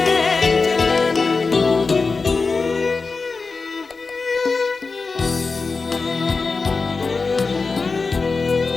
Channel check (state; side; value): quieter; right; 4.2 dB